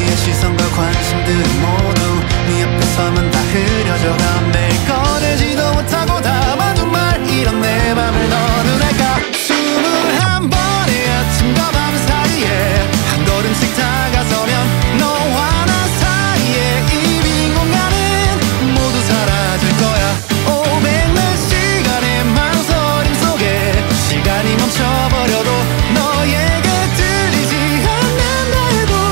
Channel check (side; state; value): left; quieter; 32.7 dB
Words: 시선과 관심들은 모두 네 앞에 서면 다 흐려져가. 매일 꺼내지도 못하고 담아둔 말 이런 내 맘을 너는 알까. 21번의 아침과 밤 사이에 한 걸음씩 다가서면 너와 나 사이에 이 빈 공간은 모두 사라질 거야. 500몇 시간의 망설임 속에 시간이 멈춰버려도 너에게 들리지 않는다 해도